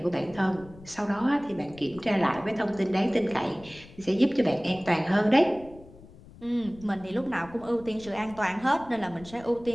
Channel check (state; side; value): noise; left; rumble, 21 dB below the sound